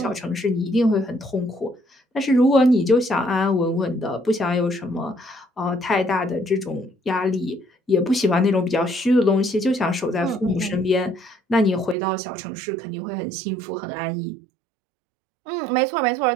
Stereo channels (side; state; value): left; drops out; at 12.0 s